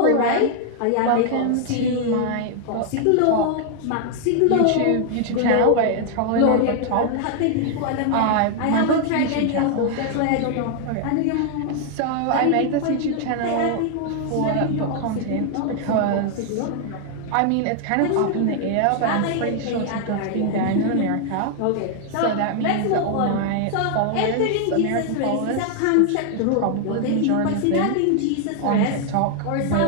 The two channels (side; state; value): both; different; correlation 0.00